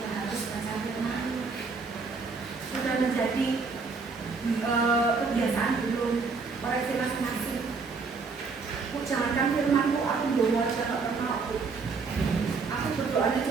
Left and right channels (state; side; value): quieter; left; 4.6 dB